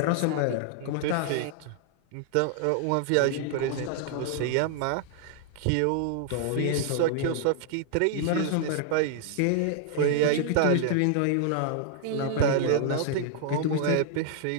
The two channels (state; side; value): different; both; correlation 0.00